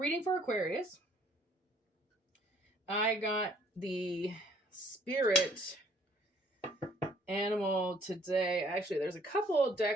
for Aquarius. I got the spirit animal today. Actually, there's a couple of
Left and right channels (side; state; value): both; normal; correlation 0.61